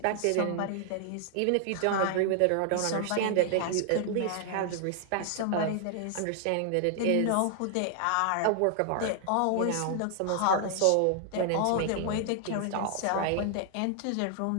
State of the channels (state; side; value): different; both; correlation 0.00